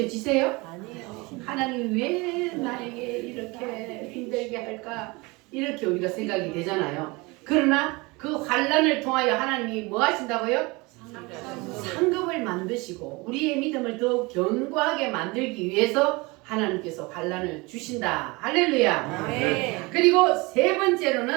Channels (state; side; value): quieter; left; 25.1 dB